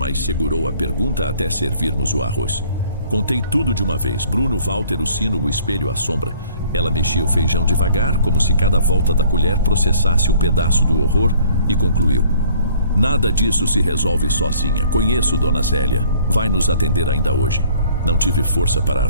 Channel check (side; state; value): both; inverted; correlation -0.56